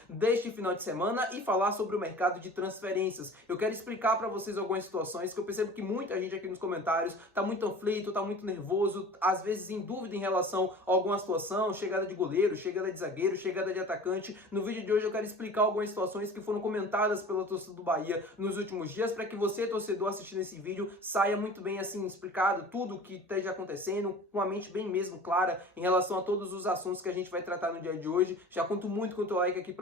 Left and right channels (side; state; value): both; normal; correlation 0.41